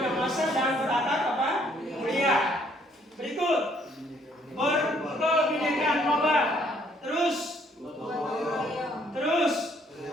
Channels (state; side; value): normal; both; correlation 0.65